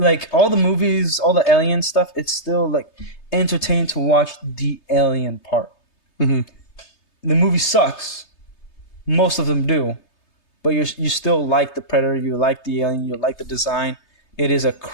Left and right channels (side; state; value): right; late; 3.3 ms